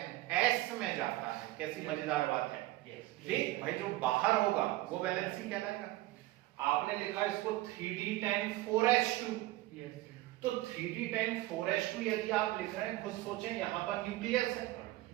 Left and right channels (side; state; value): left; quieter; 17.6 dB